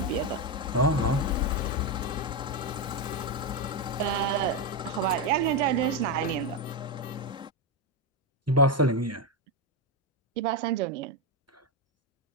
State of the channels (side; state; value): both; normal; correlation 0.07